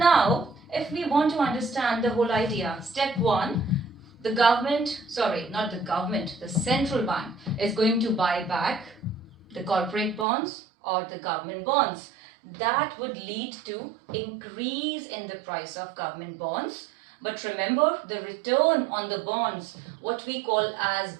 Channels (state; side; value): drops out; left; at 10.2 s